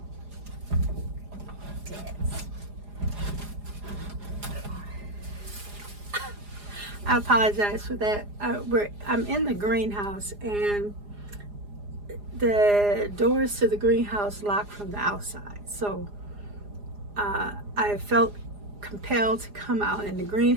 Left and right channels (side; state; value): left; late; 4.9 ms